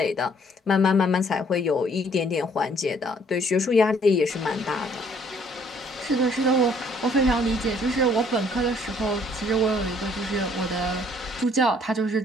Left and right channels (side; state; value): both; normal; correlation 0.62